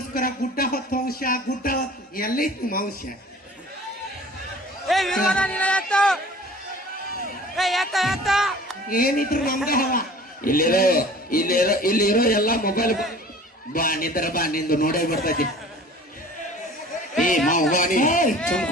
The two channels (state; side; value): normal; both; correlation 0.45